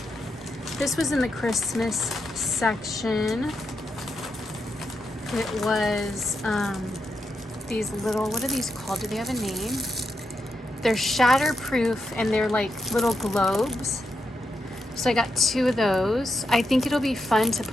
this was in the Christmas section. It was these little, what are these called? Do they have a name? They're shatterproof, and they're like little globes. So I got 2 of those. I think it'll be fun to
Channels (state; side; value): normal; both; correlation 0.84